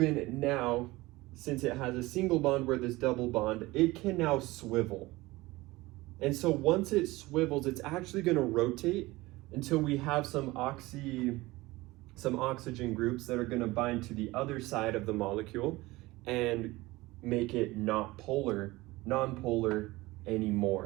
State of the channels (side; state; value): left; quieter; 20.3 dB